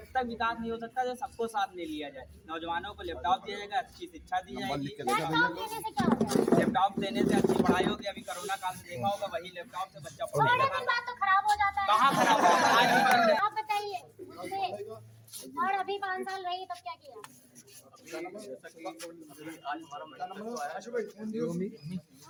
तक विकास नहीं हो सकता तो सबको साथ में लिया जाए। नौजवानों को लैपटॉप दिया जाएगा, अच्छी शिक्षा दी जाएगी। लैपटॉप देने से अच्छी पढ़ाई होगी। अभी कोरोना काल में देखा होगा, वही लैपटॉप से बच्चा पढ़ेगा। तो खराब हो जाता है। कहाँ खराब होगा? आप बताइए मुझे, और अभी 5 साल रही तब क्या किया?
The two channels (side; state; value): both; identical; correlation 1.00